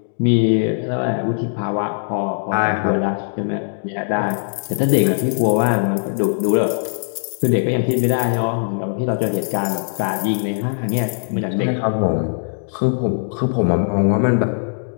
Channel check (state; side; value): silent; right; digital silence